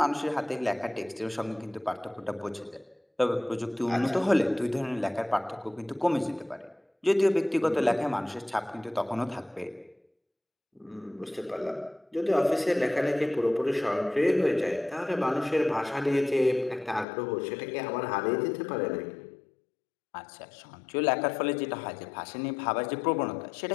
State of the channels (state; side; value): drops out; right; at 17.1 s